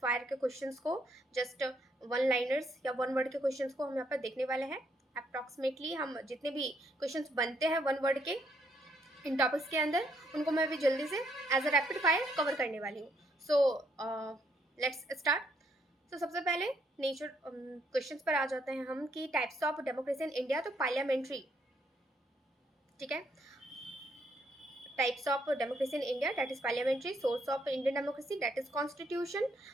फायर के क्वेश्चंस को, जस्ट वन लाइनर्स या वन वर्ड के क्वेश्चंस को हम यहाँ पर देखने वाले हैं। अप्रॉक्सीमेटली हम जितने भी क्वेश्चंस बनते हैं वन वर्ड के इन टॉपिक्स के अंदर, उनको मैं भी जल्दी से as a rapid fire cover करने वाली हूँ। So let's start. तो सबसे पहले नेचर क्वेश्चंस पर आ जाते हैं हम कि types of democracy in India. तो पार्लियामेंट्री, ठीक है। Types of democracy in India, that is parliamentary. Source of Indian democracy, that is constitution.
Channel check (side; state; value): both; normal; correlation 0.72